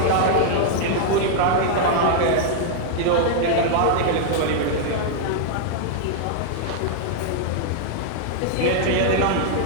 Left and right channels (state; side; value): different; both; correlation -0.01